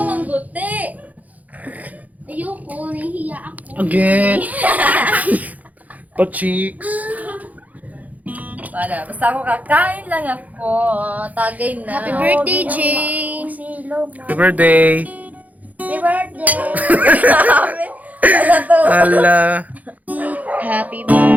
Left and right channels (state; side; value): late; left; 0.077 ms